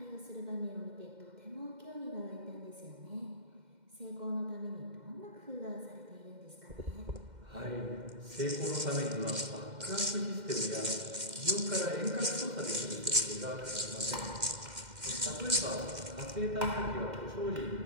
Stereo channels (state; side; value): late; left; 2.1 ms